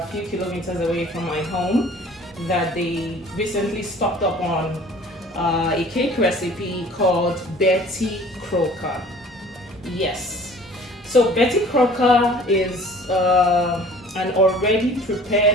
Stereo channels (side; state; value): both; normal; correlation 0.49